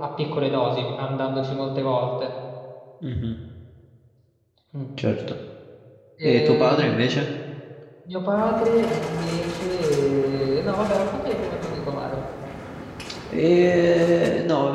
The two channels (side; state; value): both; identical; correlation 1.00